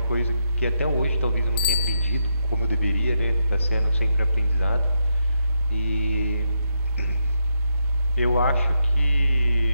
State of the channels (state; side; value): inverted; both; correlation -0.81